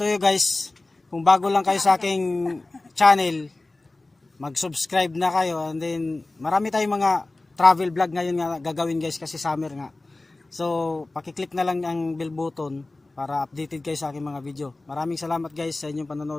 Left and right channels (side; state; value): right; quieter; 3.0 dB